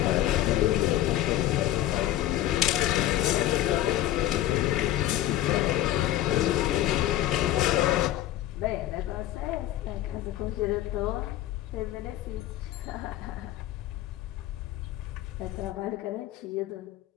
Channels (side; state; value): right; quieter; 13.8 dB